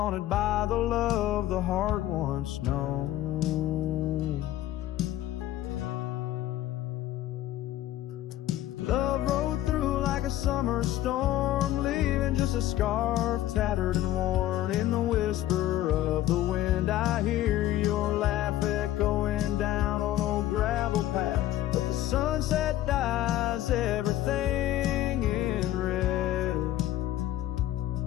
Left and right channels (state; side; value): quieter; right; 13.9 dB